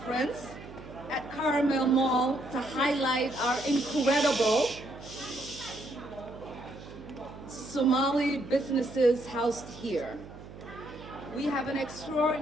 at Carmel Mall to highlight our incredible Somali businesses housed here. We have an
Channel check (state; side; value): noise; right; hum, 15 dB below the sound